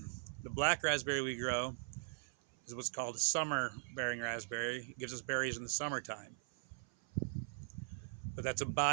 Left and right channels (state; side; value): silent; left; 51 dB below the other